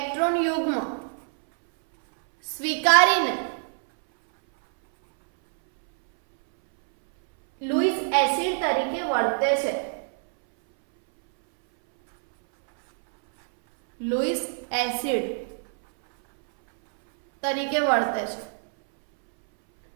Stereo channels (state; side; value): silent; left; 62 dB below the other